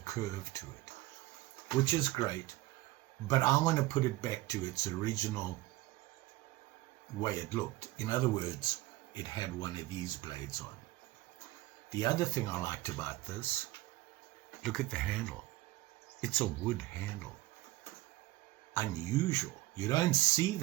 to it, which is great, but I want to put it back to its original way it looked. In other words, it had one of these blades on. The other thing I liked about this, look at the handle. It's a wood handle. Unusual. You don't see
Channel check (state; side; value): quieter; left; 17.9 dB